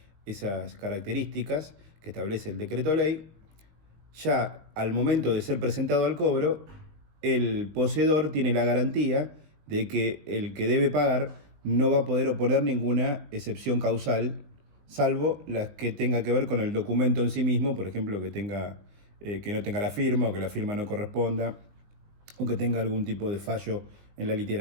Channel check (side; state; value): left; late; 20 ms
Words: esas características que establece el decreto ley, ya al momento de ser presentado al cobro, el poseedor tiene la garantía de que el que debe pagar no va a poder oponer ninguna excepción causal, salvo las que tenga que ver con el documento en sí mismo, por ejemplo, que no tenga la firma o que la firma no corresponda o que tenga algún tipo de fallo en la